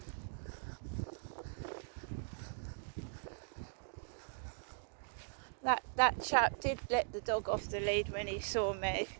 That chap did let the dog off the lead when he saw me.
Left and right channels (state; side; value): silent; left; digital silence